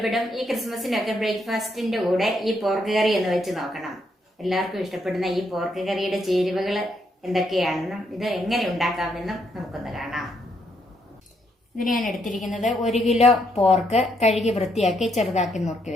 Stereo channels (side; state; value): both; normal; correlation 0.75